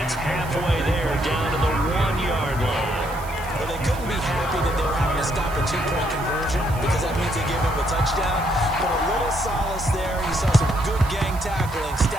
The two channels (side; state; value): right; noise; hiss, 18 dB below the sound